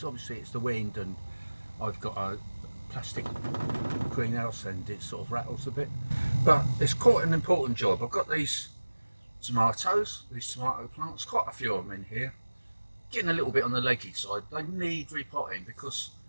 the wind, and I've got a plastic greenhouse and it sort of rattles a bit, but it's quite an important job. I've got these tomato plants, quite a few of them in here, getting a little bit on the leggy side. They need repotting because,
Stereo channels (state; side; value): inverted; both; correlation -1.00